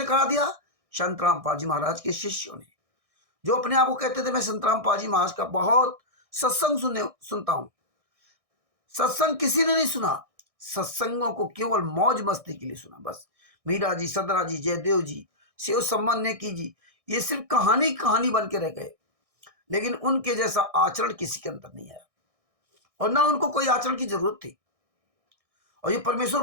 करा दिया? संतराम पाजी महाराज के शिष्यों ने, जो अपने आप को कहते थे मैं संतराम पाजी महाराज का बहुत सत्संग सुनता हूं। सत्संग किसी ने नहीं सुना, सत्संगों को केवल मौज मस्ती के लिए सुना। बस मीरा जी, सदरा जी, जयदेव जी, शिव सम्मान नेकी जी, ये सिर्फ कहानी कहानी बन के रह गए, लेकिन उनके जैसा आचरण किसी के अंदर नहीं आया, और ना उनको कोई आचरण की जरूरत थी। और ये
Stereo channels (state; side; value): late; left; 1.6 ms